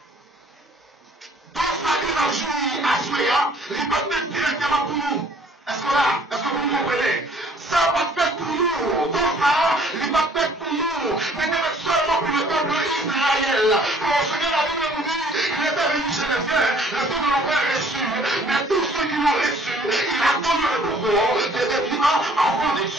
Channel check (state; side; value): normal; both; correlation 0.57